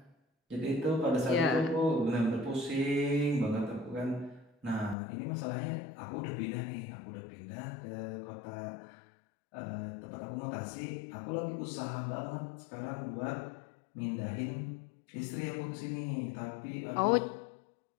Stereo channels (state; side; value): drops out; right; at 5.0 s